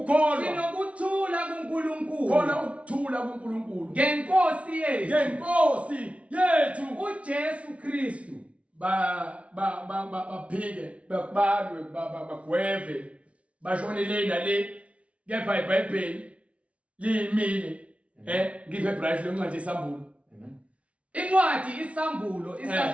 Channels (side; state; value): left; late; 0.063 ms